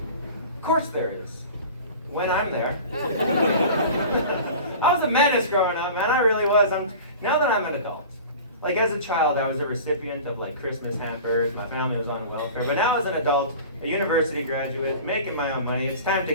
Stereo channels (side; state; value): both; inverted; correlation -0.38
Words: Of course there is. When I'm there. I was a menace growing up, man, I really was. Now that I'm an adult. Like as a child, I was a recipient of like Christmas hampers, my family was on welfare, but now as an adult, a university graduate, making my own money, it's time to